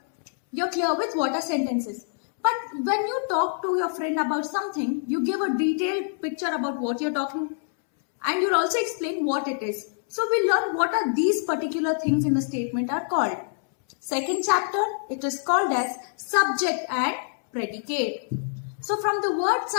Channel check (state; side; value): silent; right; 61 dB below the other